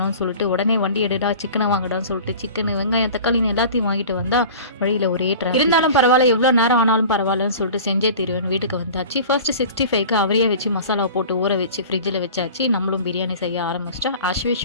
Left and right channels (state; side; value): inverted; both; correlation -0.39